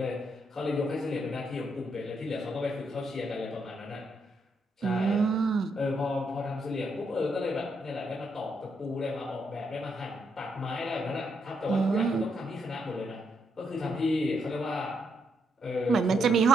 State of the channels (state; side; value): normal; both; correlation 0.77